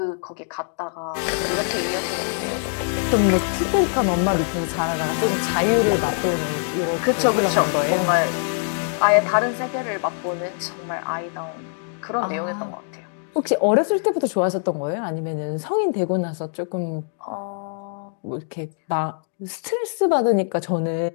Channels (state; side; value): silent; right; digital silence